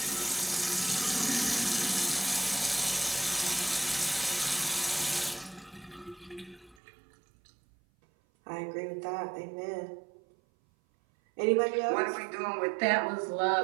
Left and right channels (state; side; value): drops out; left; at 6.8 s